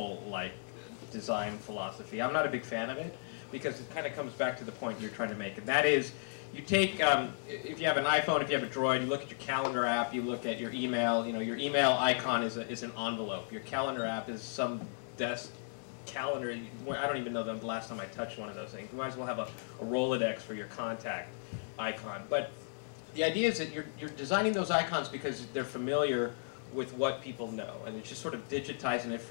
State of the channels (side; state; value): right; silent; digital silence